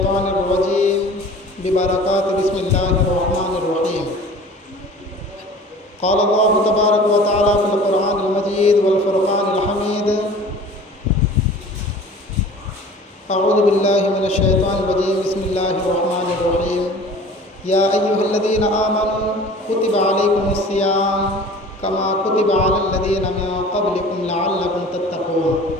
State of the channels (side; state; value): both; normal; correlation 0.43